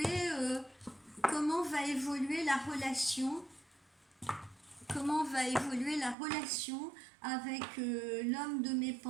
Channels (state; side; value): drops out; left; at 6.2 s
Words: la relation? Comment va évoluer la relation avec l'homme de mes